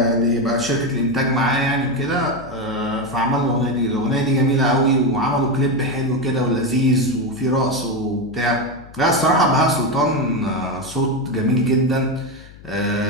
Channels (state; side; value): noise; left; hum, 20 dB below the sound